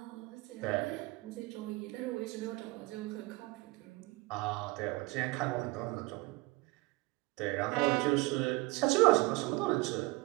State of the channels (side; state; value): left; quieter; 23.2 dB